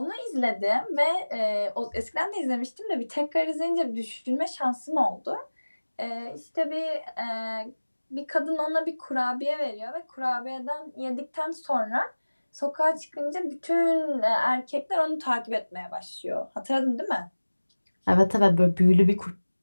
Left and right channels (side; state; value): both; inverted; correlation -1.00